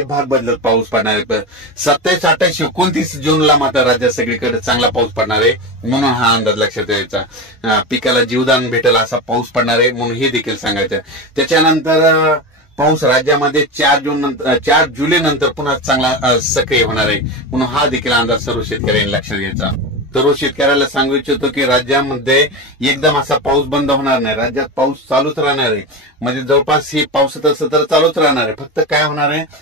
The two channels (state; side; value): normal; both; correlation 0.21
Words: भाग बदलत पाऊस पडणार आहे। 27, 28, 29 जूनला मात्र राज्यात सगळीकडे चांगला पाऊस पडणार आहे, म्हणून हा अंदाज लक्षात यायचा। पिकाला जीवदान भेटेल असा पाऊस पडणार आहे म्हणून हे देखील सांगायचं। त्याच्यानंतर पाऊस राज्यामध्ये 4 जुलै नंतर पुन्हा चांगला सक्रिय होणार आहे, म्हणून हा देखील अंदाज सर्व शेतकऱ्यांनी लक्षात घ्यायचा। सर्व शेतकऱ्याला सांगू इच्छितो की राज्यामध्ये एकदम असा पाऊस बंद होणार नाही, राज्यात पाऊस चालूच राहणार आहे। म्हणजे जवळपास ही पावसाचं सत्र चालूच राहणार आहे। फक्त काय होणार आहे,